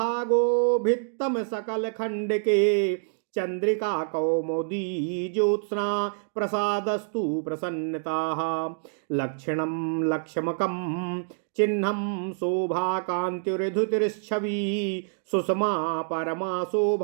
भित्तम सकल खण्डके चंद्रिका कौमुदी ज्योत्स्ना प्रसादस्तु प्रसन्नताः लक्षणं लक्ष्मकं चिह्नं शोभा कान्तिर्धुतिर्छवि सुषमा परमा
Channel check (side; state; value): left; silent; digital silence